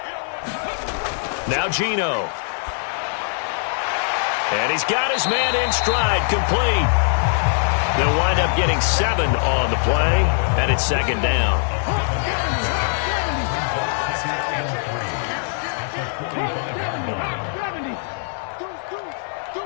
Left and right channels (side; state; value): right; silent; digital silence